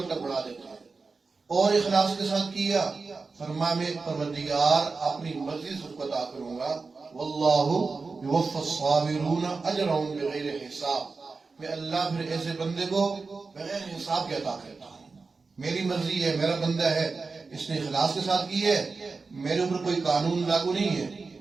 تک بڑھا دیتے ہیں۔ اور اخلاص کے ساتھ کیا، فرمایا میں پروردگار اپنی مرضی سے اس کو عطا کروں گا، واللہ یوفی الصابرین اجرهم بغیر حساب۔ میں اللہ پھر ایسے بندے کو بغیر حساب کے عطا کرتا ہوں۔ میری مرضی ہے، میرا بندہ ہے، اس نے اخلاص کے ساتھ کی ہے، میرے اوپر کوئی قانون لاگو نہیں ہے،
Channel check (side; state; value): left; quieter; 4.3 dB